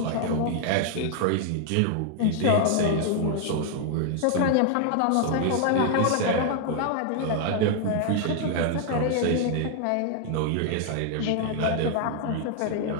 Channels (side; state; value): both; different; correlation 0.00